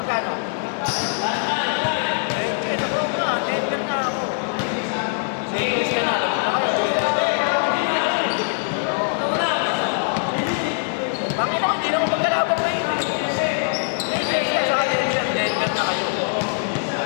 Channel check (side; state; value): right; silent; digital silence